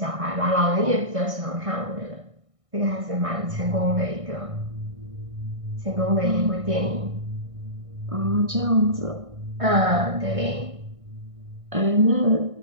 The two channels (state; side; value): late; left; 1.6 ms